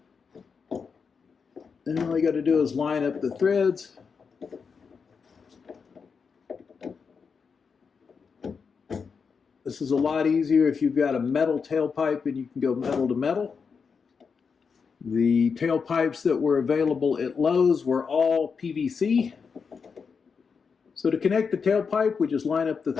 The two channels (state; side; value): quieter; right; 5.7 dB